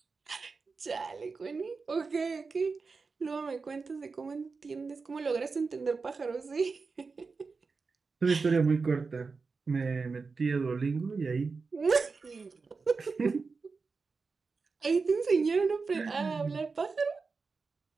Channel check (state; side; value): quieter; left; 4.5 dB